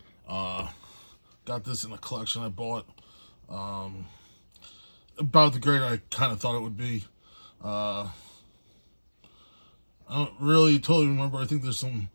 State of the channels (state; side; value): inverted; both; correlation -1.00